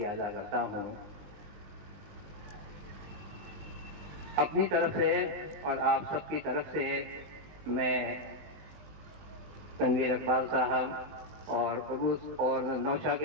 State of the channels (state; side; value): late; left; 20 ms